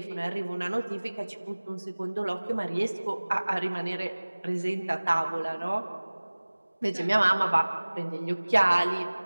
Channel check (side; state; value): both; inverted; correlation -1.00